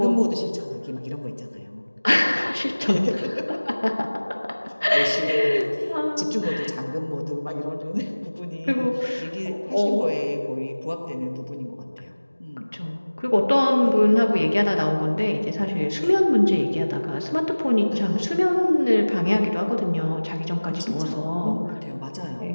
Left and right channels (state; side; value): inverted; both; correlation -1.00